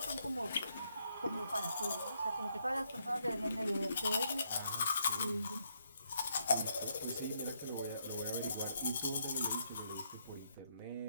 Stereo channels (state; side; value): inverted; both; correlation -0.75